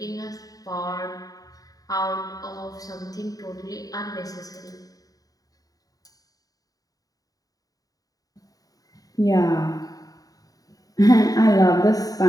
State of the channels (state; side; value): late; right; 0.18 ms